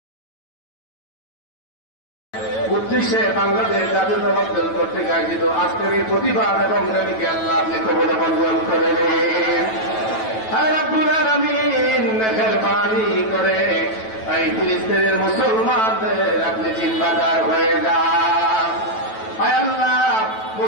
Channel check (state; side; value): late; right; 9.1 ms